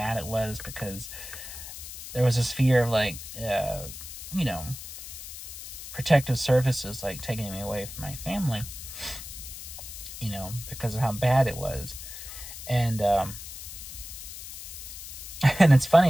it was, because there was this fear of, like, protective services, like, taking me away from my family, because of how bad it was. And, and it's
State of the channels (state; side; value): noise; left; hiss, 11 dB below the sound